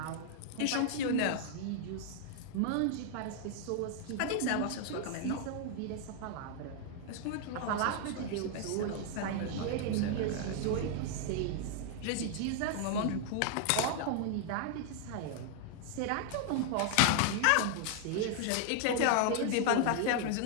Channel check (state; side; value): different; both; correlation 0.00